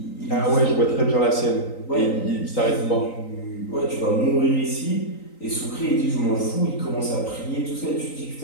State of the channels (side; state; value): right; late; 3.9 ms